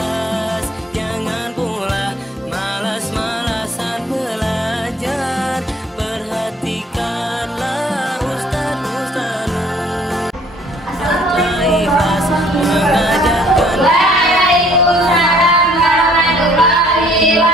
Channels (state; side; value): normal; both; correlation 0.58